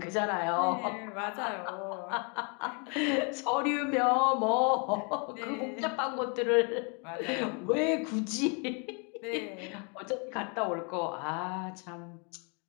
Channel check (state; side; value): quieter; right; 35.8 dB